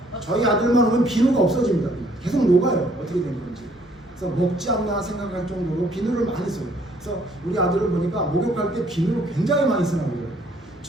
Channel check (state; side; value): normal; both; correlation 0.63